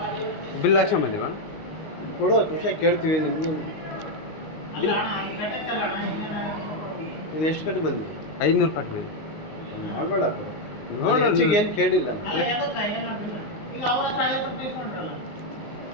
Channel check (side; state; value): right; late; 19 ms